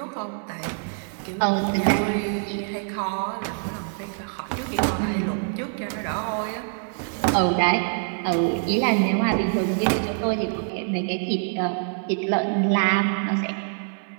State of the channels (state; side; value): silent; left; 57 dB below the other